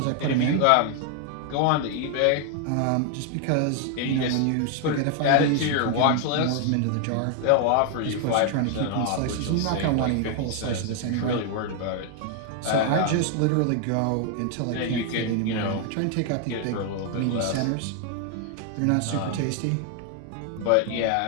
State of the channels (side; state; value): both; different; correlation 0.00